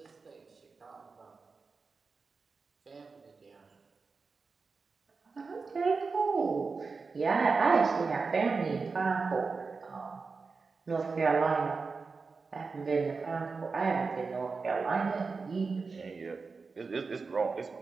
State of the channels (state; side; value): quieter; left; 4.5 dB